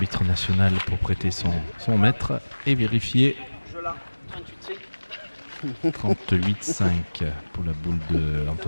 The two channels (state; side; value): inverted; both; correlation -1.00